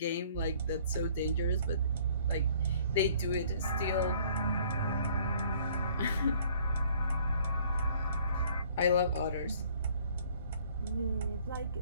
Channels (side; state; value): both; inverted; correlation -0.57